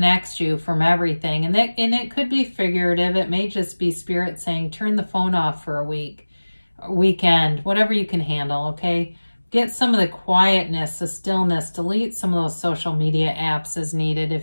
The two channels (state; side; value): inverted; both; correlation -1.00